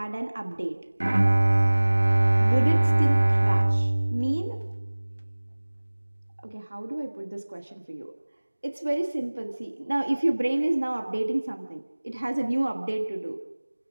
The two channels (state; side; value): inverted; both; correlation -1.00